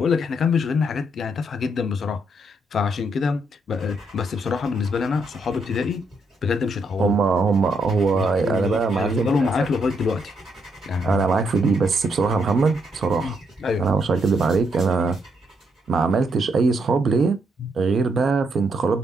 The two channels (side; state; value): both; normal; correlation 0.76